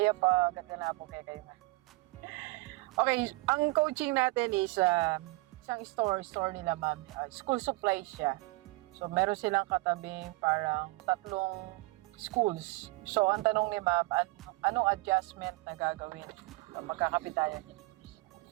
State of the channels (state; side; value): quieter; left; 23.8 dB